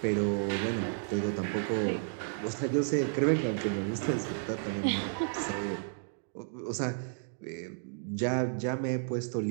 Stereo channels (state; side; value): silent; left; digital silence